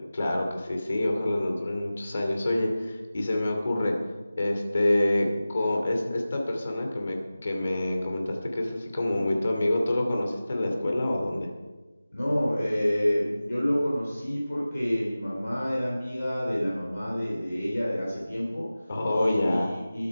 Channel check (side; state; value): both; inverted; correlation -0.96